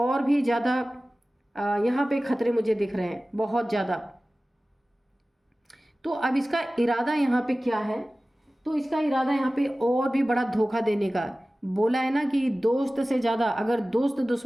भी ज़्यादा यहाँ पे खतरे मुझे दिख रहे हैं, बहुत ज़्यादा। तो अब इसका इरादा यहाँ पे क्या है, तो इसका इरादा यहाँ पे और भी बड़ा धोखा देने का। बोला है ना कि दोस्त से ज़्यादा, अगर दोस्त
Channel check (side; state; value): both; normal; correlation 0.97